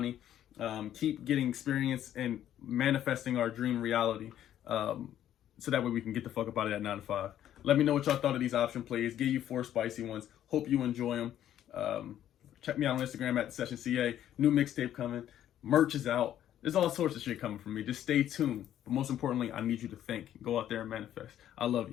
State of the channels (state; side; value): quieter; right; 11.3 dB